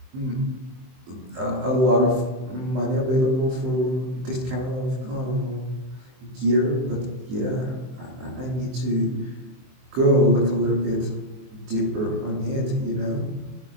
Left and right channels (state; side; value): late; left; 23 ms